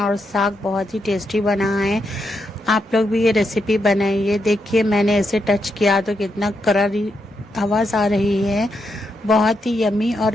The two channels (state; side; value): normal; both; correlation 0.82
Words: और साग बहुत ही टेस्टी बना है। आप लोग भी ये रेसिपी बनाइए। देखिए मैंने ऐसे टच किया तो कितना करारी आवाज़ आ रही है। बहुत ही यमी और